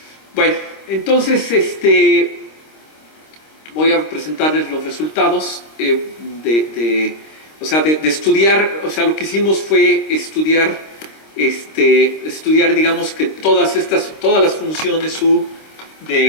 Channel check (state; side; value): late; right; 26 ms